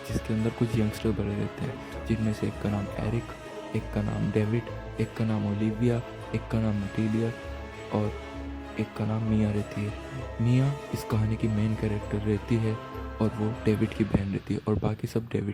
जिसके अंदर कुछ यंगस्टर भरे रहते हैं, जिनमें से एक का नाम एरिक, एक का नाम डेविड, एक का नाम ओलिविया, एक का नाम नटीलिया और एक का नाम मिया रहती है। मिया इस कहानी की मेन कैरेक्टर रहती है और वो डेविड की बहन रहती है और बाकी सब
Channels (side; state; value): both; identical; correlation 1.00